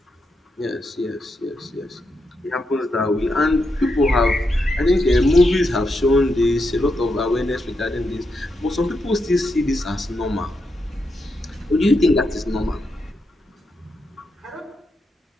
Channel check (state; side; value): normal; both; correlation 0.84